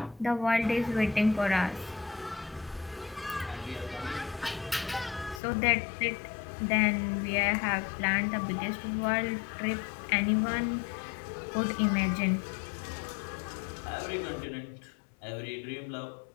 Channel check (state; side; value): drops out; right; at 5.4 s